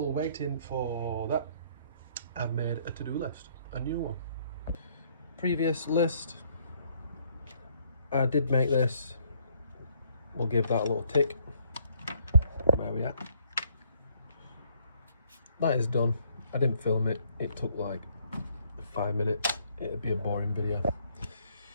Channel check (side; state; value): both; inverted; correlation -0.66